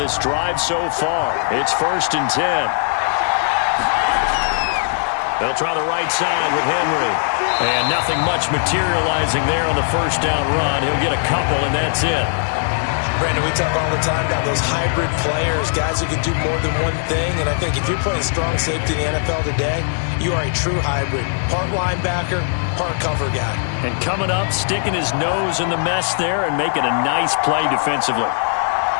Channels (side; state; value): right; silent; digital silence